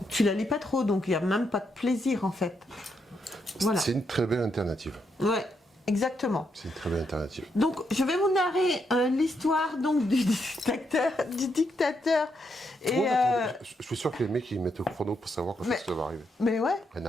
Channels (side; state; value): both; normal; correlation 0.79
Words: Tu la lis pas trop, donc il n'y a même pas de plaisir en fait. Voilà. C'est une très belle alternative. Ouais, exactement. C'est une très belle alternative. Donc je vais vous narrer l'histoire donc du dictateur. Et ouais, je suis sûr que les mecs ils mettent au chrono pour savoir quand ça va arriver. Mais ouais,